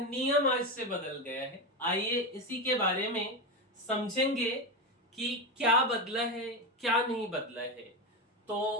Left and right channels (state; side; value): normal; both; correlation 0.14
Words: आज से बदल गया है। आइए इसी के बारे में समझेंगे कि क्या बदला है, क्या नहीं बदला है।